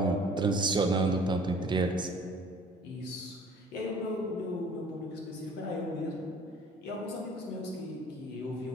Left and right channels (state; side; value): normal; both; correlation 0.51